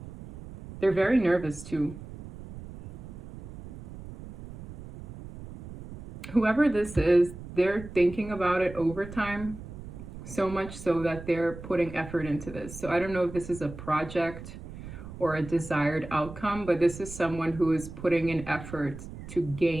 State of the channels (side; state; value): right; noise; rumble, 13 dB below the sound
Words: They're very nervous too. Whoever this is, they're thinking about it over time, so much so that they're putting effort into this. So I don't know if this is a project or a desired outcome, but this is someone who is putting an effort to